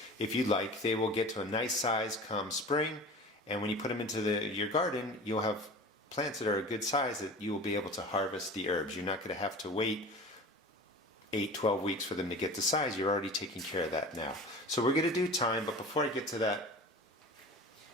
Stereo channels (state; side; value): normal; both; correlation 0.37